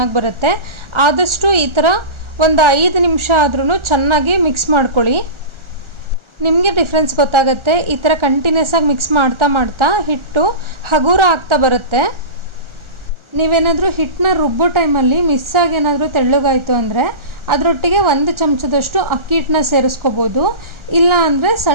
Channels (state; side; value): late; left; 1.4 ms